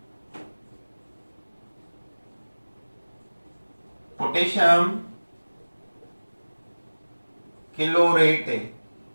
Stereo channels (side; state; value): both; inverted; correlation -1.00